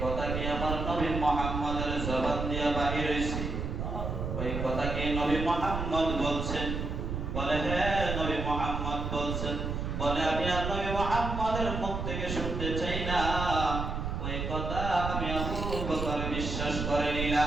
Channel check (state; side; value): noise; right; rumble, 3 dB below the sound